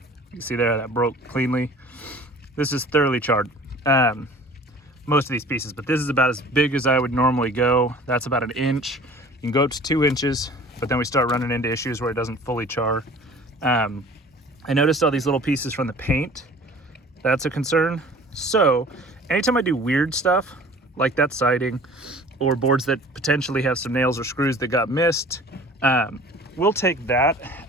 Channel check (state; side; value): normal; both; correlation 0.46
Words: you see there, that broke cleanly. This is thoroughly charred, most of these pieces, but this is about as big as I would normally go. That's about an inch. You can go up to 2 inches, but then we start running into issues where it doesn't fully char. I noticed all these little pieces from the paint. That's a concern. So anytime I do weird stuff, like that siding, or boards that potentially have some nails or screws that got missed, we'll take that,